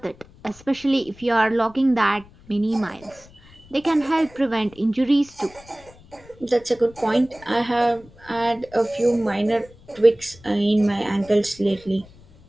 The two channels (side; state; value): left; noise; rumble, 24 dB below the sound